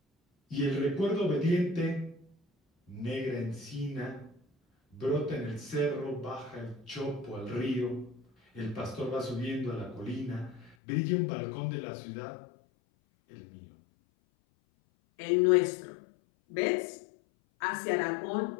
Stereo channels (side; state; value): right; drops out; at 10.8 s